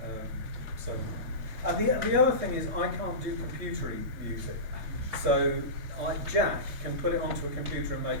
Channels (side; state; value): left; late; 3.4 ms